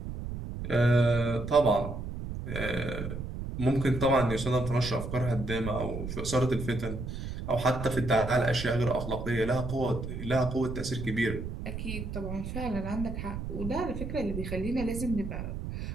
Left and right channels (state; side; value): noise; right; rumble, 6 dB below the sound